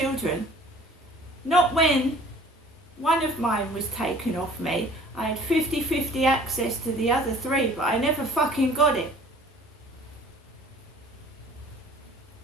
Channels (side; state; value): both; normal; correlation 0.50